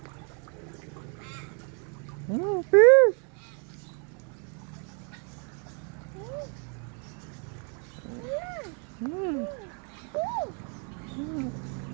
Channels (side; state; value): left; quieter; 39.1 dB